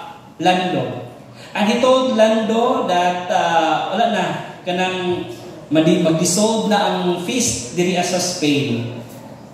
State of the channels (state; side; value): identical; both; correlation 1.00